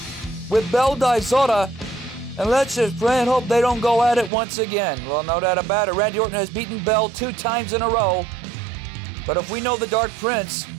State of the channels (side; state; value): left; drops out; at 4.3 s